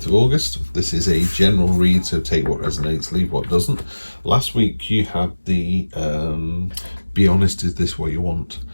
of August. This is a general read, so take what resonates, leave what doesn't. Last week you had the be honest, is this what you want?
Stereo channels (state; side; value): inverted; both; correlation -1.00